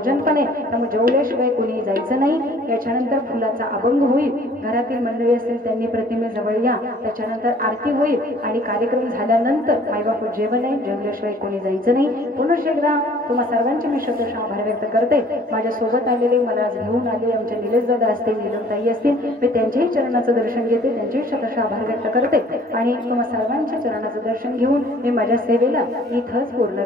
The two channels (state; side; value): normal; both; correlation 0.54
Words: पण आहे, त्यामुळे जेवल्याशिवाय कुणी जायचं नाही. याच्यानंतर फुलाचा अभंग होईल, घरातील मंडळी असतील त्यांनी प्रतिमेजवळ या, त्याच्यानंतर आरती होईल आणि कार्यक्रम झाल्यानंतर मायबाप जेवण आहे, जेवल्याशिवाय कोणी जायचं नाही. पुन्हा एकदा तुम्हा सर्वांचे मी शतश आभार व्यक्त करते. माझ्या सोबत आलेले, मला घेऊन आले आमचे निलेश दादा असतील, नीलमताई असतील, मी त्यांच्याही चरणाचं दर्शन घेते, त्यांचेही शतश आभार व्यक्त करते आणि तुम्हा सर्वांच्या चरणाचं दर्शन घेऊन मी माझ्या सेवेला इथंच पूर्ण